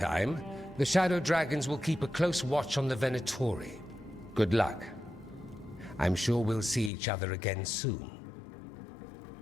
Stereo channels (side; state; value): right; drops out; at 6.9 s